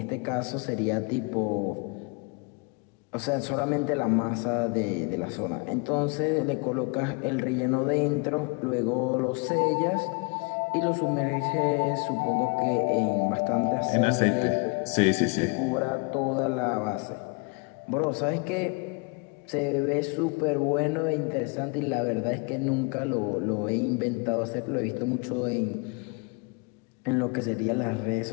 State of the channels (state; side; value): quieter; right; 31.7 dB